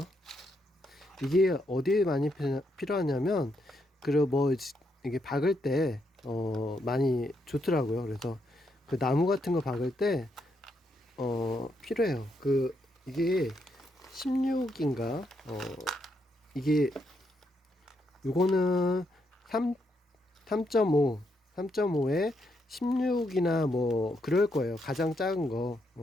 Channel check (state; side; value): normal; both; correlation 0.79